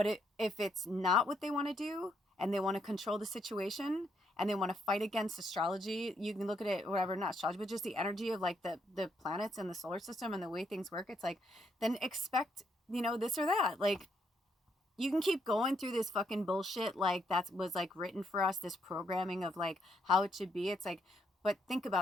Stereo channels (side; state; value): both; normal; correlation 0.74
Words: if it's not what they want to do and they want to control the situation and they want to fight against astrology, you can look at it, whatever, not astrology, but just the energy of like the planets and the solar system and the way things work. It's like, then expect, this or that. Like, you can keep going through this fucking bullshit like that was like written for us, this programming of like how it should be. It's like, but think